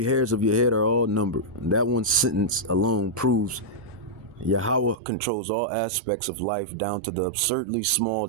hairs of your head are all numbered. And that one sentence alone proves Yahweh controls all aspects of life down to the absurdly small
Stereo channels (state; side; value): drops out; left; at 5.0 s